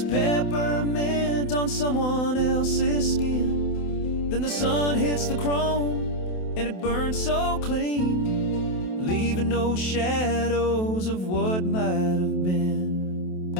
peppermint on someone else's skin. Then the sun hits the chrome and it burns so clean, leaving no shadows of what might have been.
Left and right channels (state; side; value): late; right; 28 ms